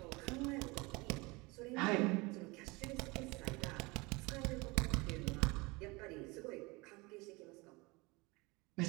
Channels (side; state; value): left; quieter; 24.8 dB